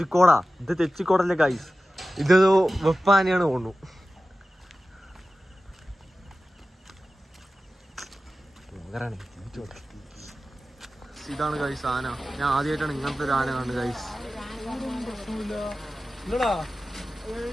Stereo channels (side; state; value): both; normal; correlation 0.95